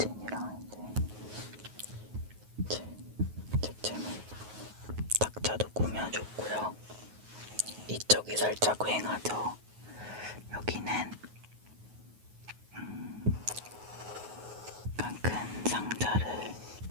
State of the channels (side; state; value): left; late; 9.4 ms